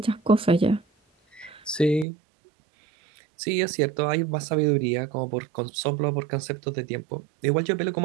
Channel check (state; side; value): drops out; left; at 2.1 s